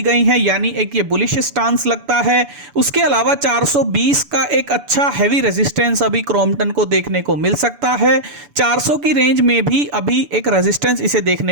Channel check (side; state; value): left; late; 6.9 ms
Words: गई है, यानी एक ये बुलिश स्टांस लगता है। उसके अलावा 420 का एक अच्छा हैवी रेजिस्टेंस अभी क्रॉम्पटन को देखने को मिल सकता है। 400 की रेंज में भी अभी एक रेजिस्टेंस इसे